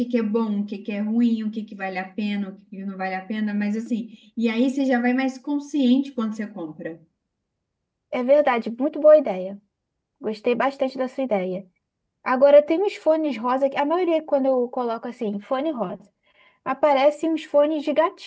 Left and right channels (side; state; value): both; identical; correlation 1.00